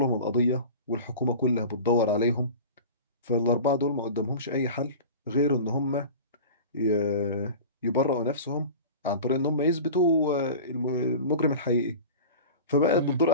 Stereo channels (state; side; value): inverted; both; correlation -0.35